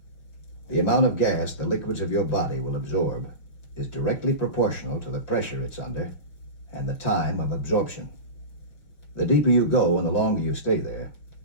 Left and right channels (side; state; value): right; late; 6.2 ms